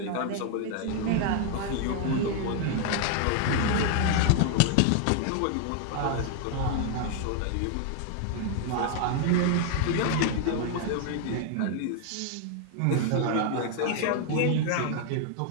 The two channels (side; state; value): both; different; correlation 0.00